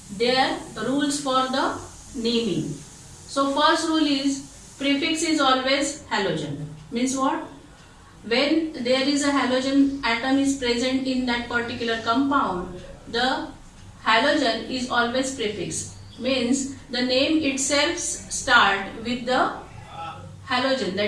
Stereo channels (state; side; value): identical; both; correlation 1.00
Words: their rules for the naming. So first rule is prefix is always halogen. Means what? When there is a halogen atom is present in that particular compound, the halogen is always prefix. Means the name itself start with the halogen,